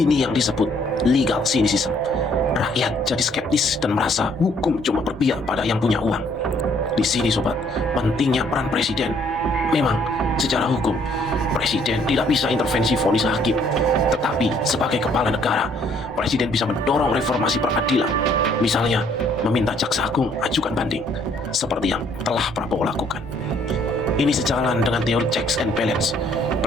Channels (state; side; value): normal; both; correlation 0.64